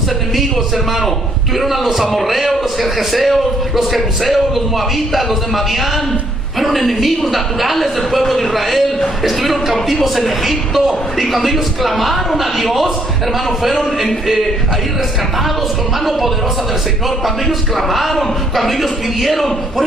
enemigos, hermano? Tuvieron a los amorreos, los gergeseos, los jebuseos, los moabitas, los de Madián. Fueron enemigos naturales del pueblo de Israel. Estuvieron cautivos en Egipto, y cuando ellos clamaron a Dios, hermano, fueron ahí rescatados con mano poderosa del Señor. Cuando ellos clamaron, cuando ellos pidieron. Por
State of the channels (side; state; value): both; normal; correlation 0.68